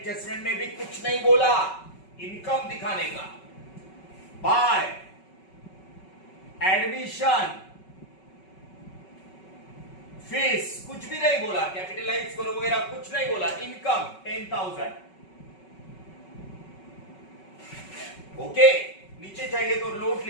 में भी कुछ नहीं बोला, इनकम दिखाने का। बाय एडमिशन फीस कुछ भी नहीं बोला, कैपिटलाइज करो वगैरह कुछ नहीं बोला। इनकम 10,000। ओके, नीचे चाहिए तो नोट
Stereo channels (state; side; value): late; right; 5.3 ms